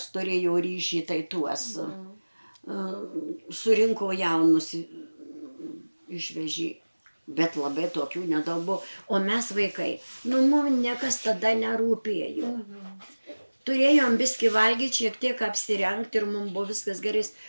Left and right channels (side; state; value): both; inverted; correlation -1.00